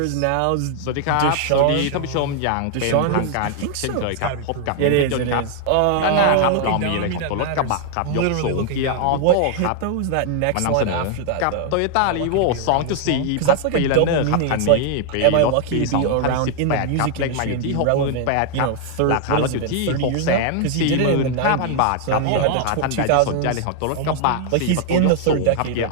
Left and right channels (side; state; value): both; different; correlation 0.00